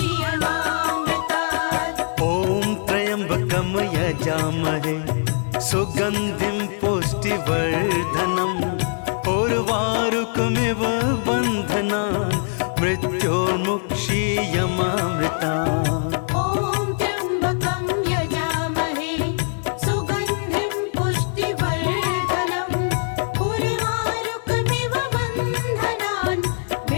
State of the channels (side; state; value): right; silent; digital silence